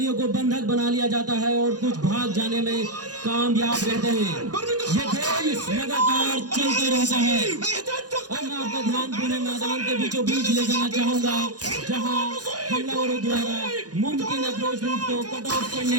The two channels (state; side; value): late; left; 0.68 ms